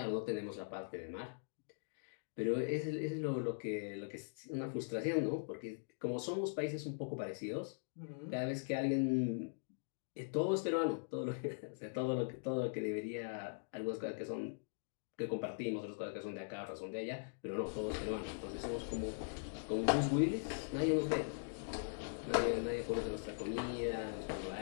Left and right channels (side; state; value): right; silent; digital silence